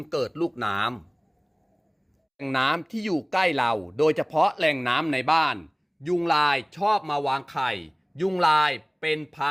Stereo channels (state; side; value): identical; both; correlation 1.00